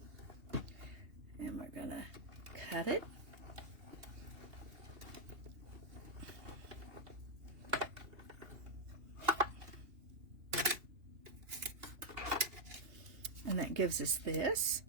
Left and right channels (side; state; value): left; late; 2.8 ms